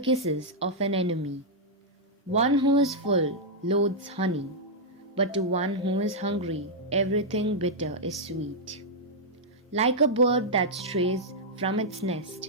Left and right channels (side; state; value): both; normal; correlation -0.07